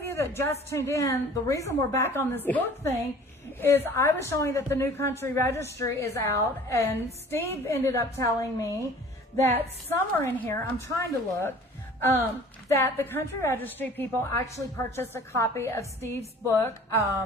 you that just tuned in, the reason we're back on this book thing is I was showing that the new Country Registry is out, and Steve ended up telling me that somewhere in here, I'm trying to look, that the Country Registry people actually purchased a copy of Steve's book,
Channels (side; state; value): both; normal; correlation 0.48